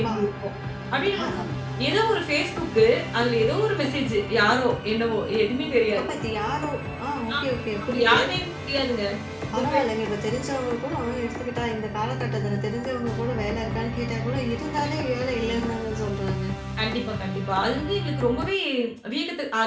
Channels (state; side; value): identical; both; correlation 1.00